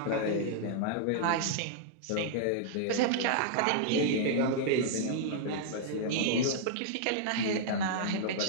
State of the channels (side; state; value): both; different; correlation -0.01